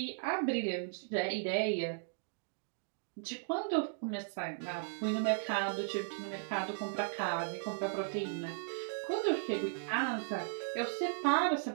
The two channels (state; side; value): silent; left; digital silence